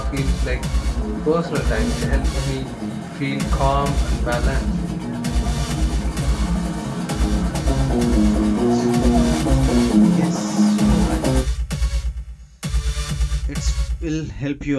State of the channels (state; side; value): identical; both; correlation 1.00